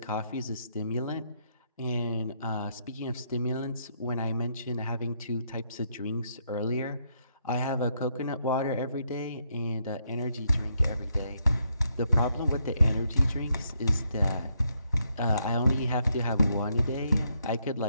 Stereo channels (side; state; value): both; inverted; correlation -0.76